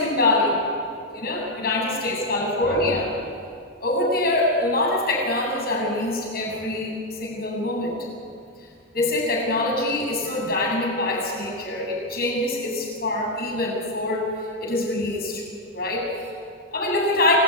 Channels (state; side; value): normal; both; correlation 0.01